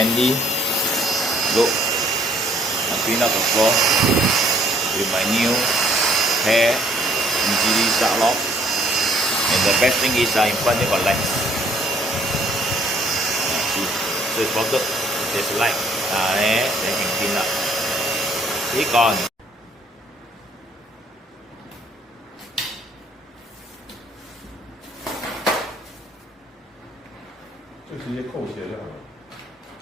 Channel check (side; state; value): both; normal; correlation 0.62